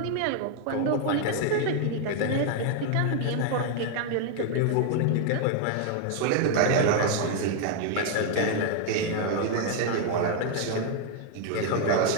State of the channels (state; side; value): different; both; correlation 0.00